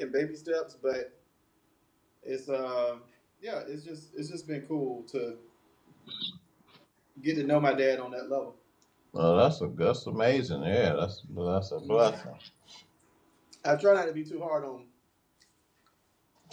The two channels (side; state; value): both; identical; correlation 1.00